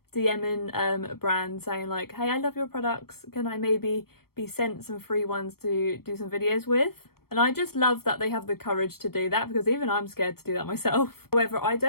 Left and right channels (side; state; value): right; late; 0.94 ms